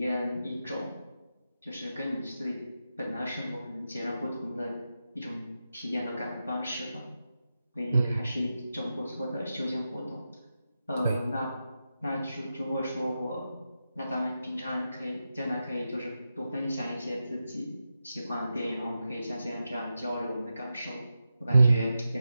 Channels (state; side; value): inverted; both; correlation -0.89